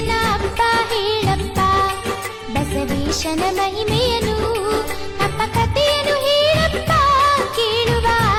ಅಪ್ಪ ಹೇಳಪ್ಪ ಬಸವೇಶನ ಮಹಿಮೆಯನು ಅಪ್ಪ ಕಥೆಯನ್ನು ಹೇಳಪ್ಪ ಕೇಳುವ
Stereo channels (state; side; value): identical; both; correlation 1.00